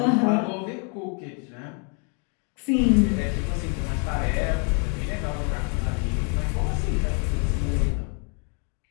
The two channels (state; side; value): quieter; right; 38.2 dB